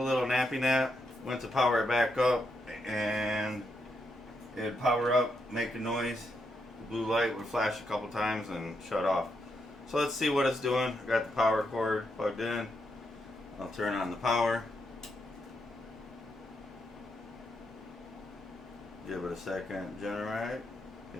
little nappy nap, went to power it back up, and it'd power up, make a noise. The blue light would flash a couple times and shut off. So let's see what it's doing. I got the power cord plugged in. I'll turn on the power. Give it a second, generate.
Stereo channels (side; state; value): both; normal; correlation 0.81